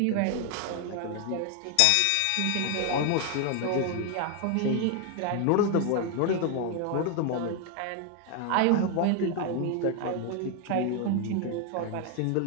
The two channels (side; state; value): both; different; correlation 0.01